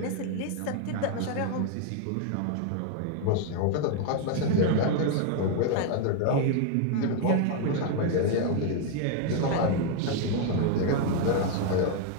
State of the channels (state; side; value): different; both; correlation 0.00